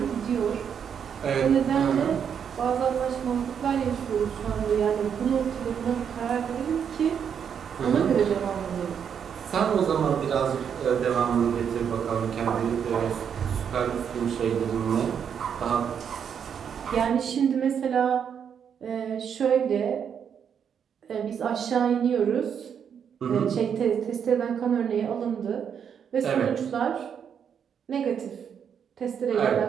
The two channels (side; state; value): left; quieter; 7.8 dB